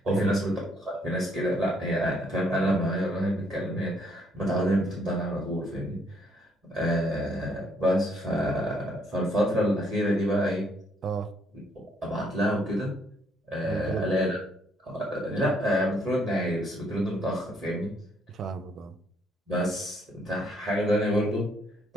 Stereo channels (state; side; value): normal; both; correlation 0.69